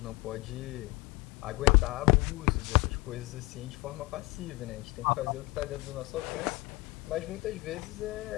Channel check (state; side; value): quieter; right; 23.2 dB